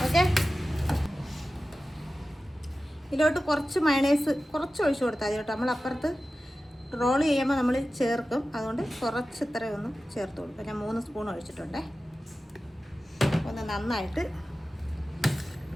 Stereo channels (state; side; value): normal; both; correlation 0.94